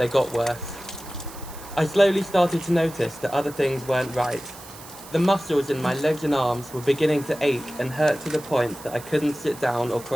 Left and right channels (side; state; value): right; noise; hiss, 17 dB below the sound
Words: got worse. I slowly started to notice that other things weren't right. The muscles in my legs and arms were beginning to ache and hurt to the point that I couldn't sit down or